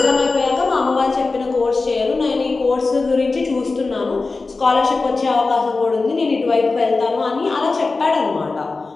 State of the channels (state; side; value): quieter; right; 3.8 dB